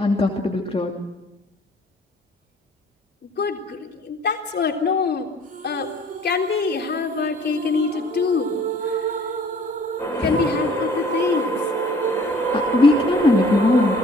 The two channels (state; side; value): normal; both; correlation 0.54